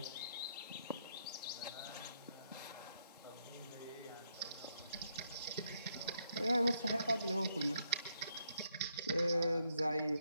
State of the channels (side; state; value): both; inverted; correlation -0.76